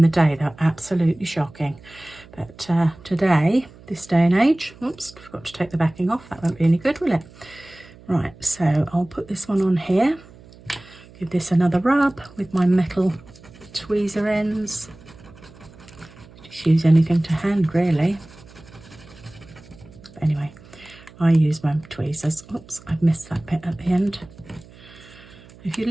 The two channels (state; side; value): noise; right; hum, 22 dB below the sound